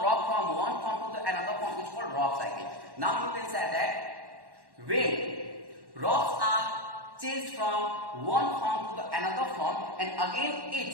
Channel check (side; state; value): left; late; 1.1 ms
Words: from one form to the another form is called rock cycle. Now you can say that when rocks are changed from one form to the another form, and again